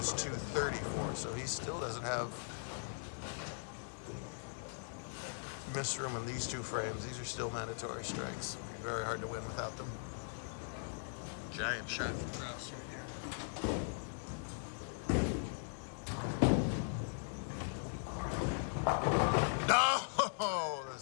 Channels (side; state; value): right; silent; digital silence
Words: 234, so he still doesn't have miss room in these two frames. These are still mandatory strikes. It'll be very hard to win without them. Giant shot for Kraus right here. No! The